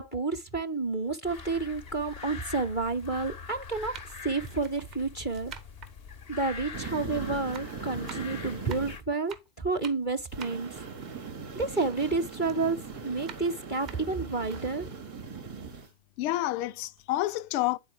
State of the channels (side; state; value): right; late; 2.3 ms